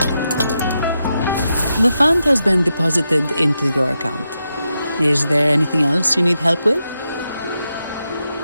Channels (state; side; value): inverted; both; correlation -0.86